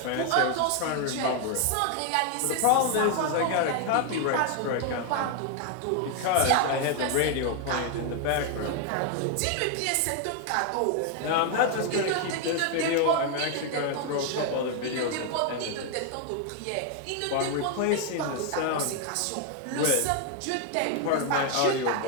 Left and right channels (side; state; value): both; different; correlation 0.00